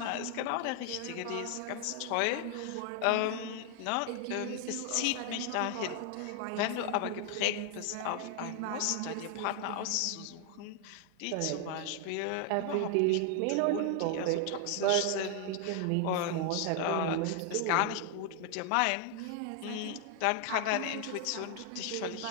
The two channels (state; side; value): different; both; correlation 0.00